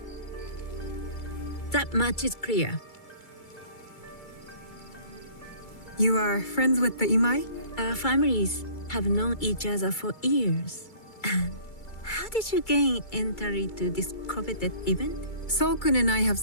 That much is clear. You are friends with the Imai? Our families have known each other for years. How did you gain entry to this coveted event? Solkun and I have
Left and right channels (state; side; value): late; right; 2.3 ms